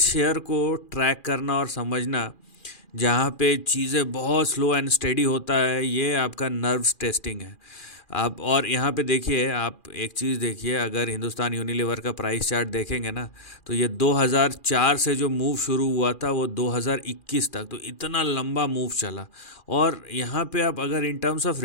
शेयर को ट्रैक करना और समझना जहाँ पे चीज़ें बहुत स्लो एंड स्टेडी होता है, ये आपका नर्व्स टेस्टिंग है। आप और यहाँ पे देखिए, आप एक चीज़ देखिए, अगर हिंदुस्तान यूनिलीवर का प्राइस चार्ट देखेंगे ना, तो ये 2004 से जो मूव शुरू हुआ था वो 2021 तक, तो इतना लंबा मूव चला। और यहाँ पे आप अगर इन टर्म्स ऑफ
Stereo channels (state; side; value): late; right; 2.4 ms